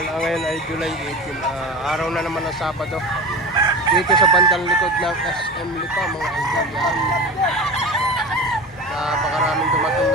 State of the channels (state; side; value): normal; both; correlation 0.30